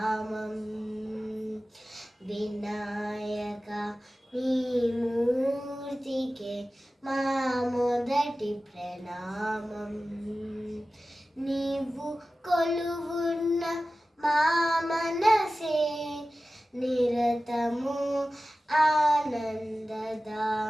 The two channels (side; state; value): both; normal; correlation 0.95